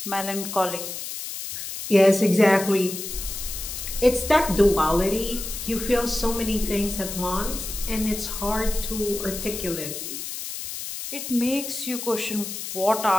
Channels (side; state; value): left; noise; hiss, 7 dB below the sound